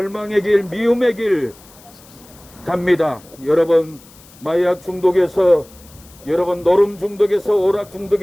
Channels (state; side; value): noise; left; hiss, 24 dB below the sound